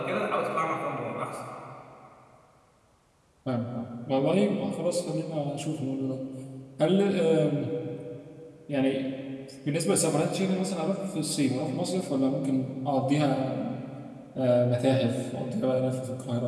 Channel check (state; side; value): identical; both; correlation 1.00